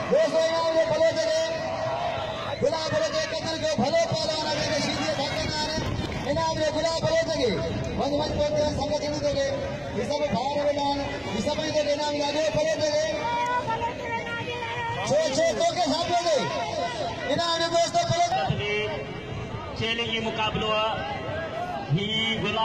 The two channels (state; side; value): identical; both; correlation 1.00